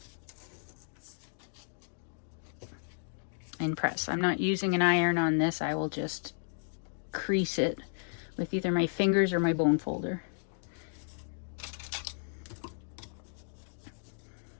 And press. I'm not using an iron on this. I will just crease it with either my fingers or my bone folder.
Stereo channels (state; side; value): silent; right; digital silence